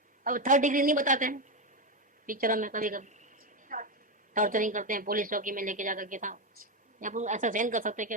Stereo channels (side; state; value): both; normal; correlation 0.10